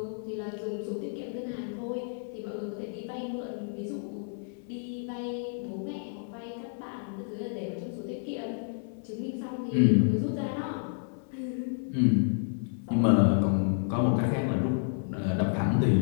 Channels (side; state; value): right; silent; 58 dB below the other